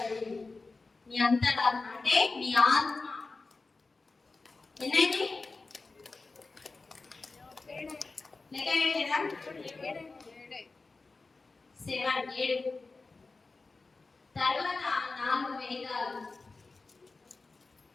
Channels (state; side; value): quieter; right; 3.8 dB